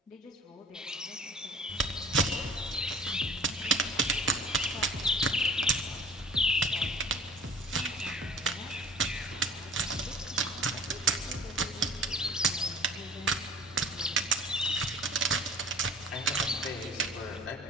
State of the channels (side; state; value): both; normal; correlation 0.47